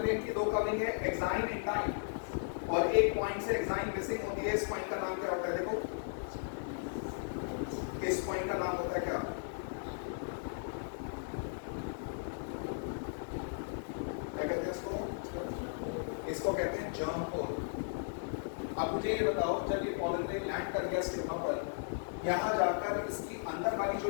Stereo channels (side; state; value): right; silent; 54 dB below the other